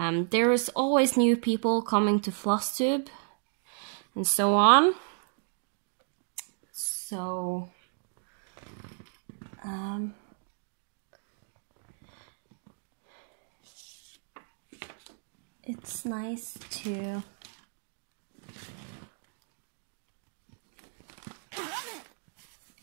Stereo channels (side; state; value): left; silent; digital silence